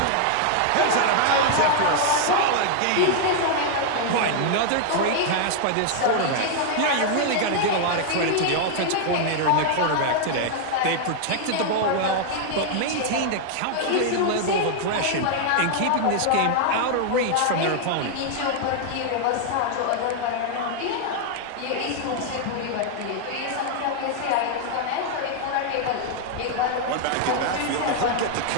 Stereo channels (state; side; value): different; both; correlation 0.00